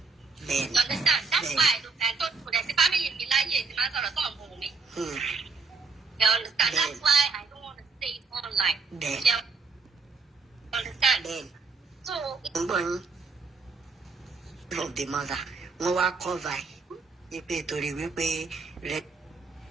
You understand? That's why I don't put the family mi láyé tí máa sọ̀rọ̀ sọ̀rọ̀ fún mi. You understand? That's why I don't want to say it online. You understand? So. Of the mother wọ́n wá cover wípé torí wípé rẹ.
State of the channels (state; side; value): quieter; left; 4.5 dB